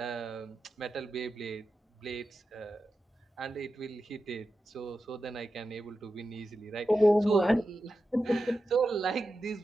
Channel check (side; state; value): both; normal; correlation 0.91